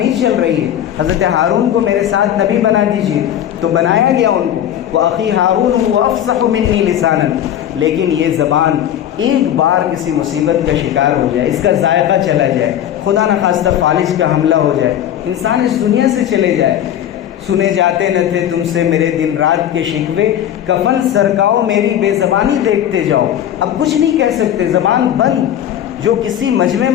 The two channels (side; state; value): right; quieter; 10.7 dB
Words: چل رہی ہے، حضرت ہارون کو میرے ساتھ نبی بنا دیجیے، تو بنایا گیا ان کو، وَأَخِي هَارُونُ هُوَ أَفْصَحُ مِنِّي لِسَانًا۔ لیکن یہ زبان ایک بار کسی مصیبت کا شکار ہو جائے، اس کا ذائقہ چلا جائے، خدا نخواستہ فالج کا حملہ ہو جائے، انسان اس دنیا سے چلے جائے۔ سنے جاتے نہ تھے تم سے میرے دن رات کے شکوے، کفن سرکاؤ میری بے زبانی دیکھتے جاؤ۔ اب کچھ نہیں کہہ سکتے، زبان بند، جو کسی مجمع